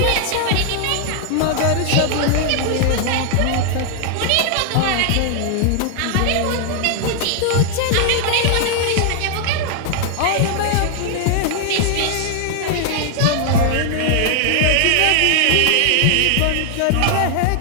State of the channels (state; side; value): different; both; correlation 0.00